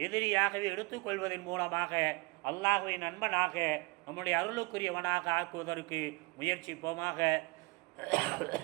எதிரியாகவே எடுத்துக்கொள்வதன் மூலமாக அல்லாஹ்வை நண்பனாக நம்முடைய அருளுக்குரியவனாக ஆக்குவதற்கு முயற்சிப்போமாக.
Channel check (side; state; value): left; quieter; 25.8 dB